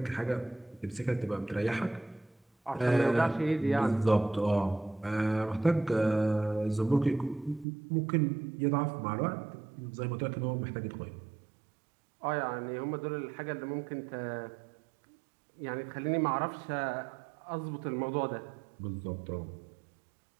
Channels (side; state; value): left; drops out; at 7.7 s